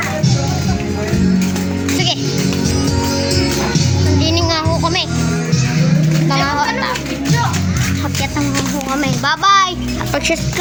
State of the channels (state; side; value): identical; both; correlation 1.00